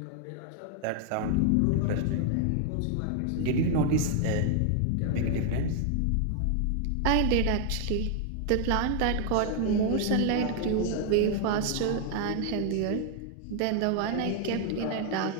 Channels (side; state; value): both; different; correlation 0.00